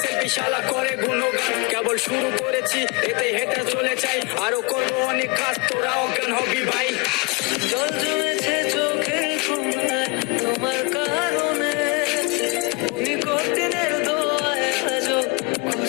সেলফি শালা করে গুণগান। কেবল শুরু করেছি এতে হেঁটে চলে চাই, আরো করবো অনেক কাজ তোরা অজ্ঞান হবি ভাই। জল জমেছে চোখে ঘুমায় তোমার কারণে, ওই কঠিনের দোয়ায় আজও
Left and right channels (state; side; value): quieter; right; 27.1 dB